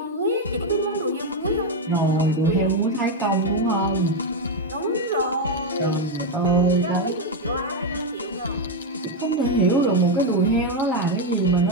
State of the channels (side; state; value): both; normal; correlation 0.05